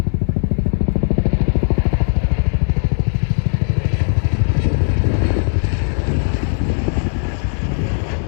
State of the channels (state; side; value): silent; right; 67 dB below the other